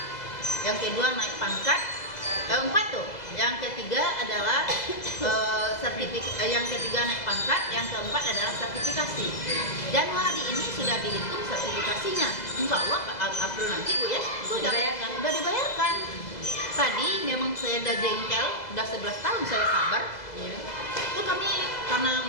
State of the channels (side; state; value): right; late; 2.0 ms